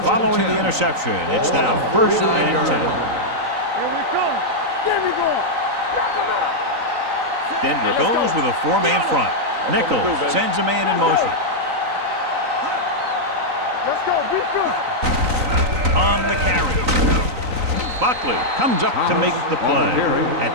Following the interception, it's now first and 10. Denver goes with a four-man front. Nichols sends a man in motion. On the carry. Buckley comes up to make the play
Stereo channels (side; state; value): left; late; 3.9 ms